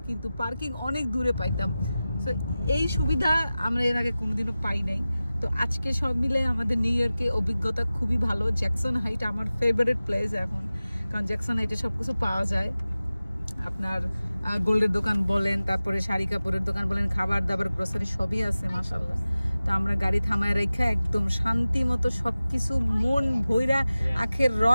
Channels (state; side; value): inverted; both; correlation -0.96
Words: কিন্তু পার্কিং অনেক দূরে পাইতাম। তো এই সুবিধা আমরা এর আগে কোনোদিনও পাই নাই। তো আজকে সব মিলে আমাদের নিউ ইয়র্কে অভিজ্ঞতা খুবই ভালো। জ্যাকসন হাইট আমার ফেভারিট প্লেস এখন, কারণ জ্যাকসন হাইটে সবকিছু পাওয়া যায়। আপনার গোল্ডের দোকান বলেন, তারপরে শাড়ি কাপড়ের দোকান বলেন, খাবার দাবার গ্রোসারি সবই আছে মাশাআল্লাহ। তো আমরা গাড়ি থামায় রেখে একদম শান্তি মতো সবকিছু মন ভইরা, আখের